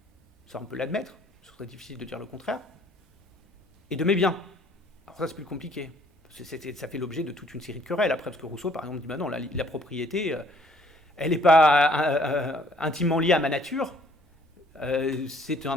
ça on peut l'admettre, ce serait difficile de dire le contraire, et de mes biens. Alors ça c'est plus compliqué, ça fait l'objet de toute une série de querelles après, parce que Rousseau par exemple dit bah non, la propriété, elle n'est pas intimement liée à ma nature, c'est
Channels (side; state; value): both; normal; correlation 0.61